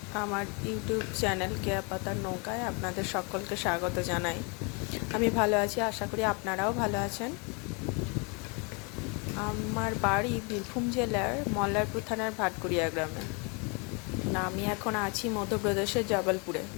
আমার ইউটিউব চ্যানেল কেয়া পাতার নৌকায় আপনাদের সকলকে স্বাগত জানাই। আমি ভালো আছি, আশা করি আপনারাও ভালো আছেন। আমার বাড়ি বীরভূম জেলার মল্লারপুর থানার ভাটকুড়িয়া গ্রামে। আমি এখন আছি মধ্যপ্রদেশের জবলপুরে।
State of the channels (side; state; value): right; quieter; 32.8 dB